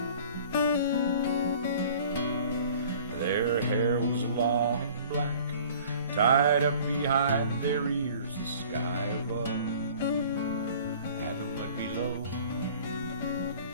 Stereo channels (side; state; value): both; inverted; correlation -0.49